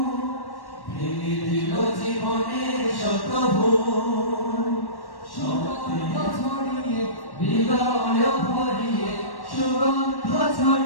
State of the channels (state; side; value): late; right; 1.1 ms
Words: ভেঙে দিল জীবনের শত ভুল সত্য ছড়িয়ে হৃদয় ভরিয়ে সুগন্ধ